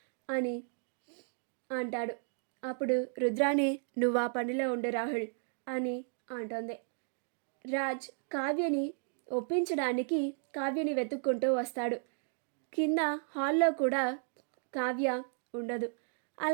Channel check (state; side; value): silent; left; 55 dB below the other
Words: అని అంటాడు. అప్పుడు రుద్రాణి, నువ్వు ఆ పనిలో ఉండు రాహుల్ అని అంటుంది. రాజ్ కావ్యని ఒప్పించడానికి కావ్యని వెతుక్కుంటూ వస్తాడు. కింద హాల్లో కూడా కావ్య ఉండదు.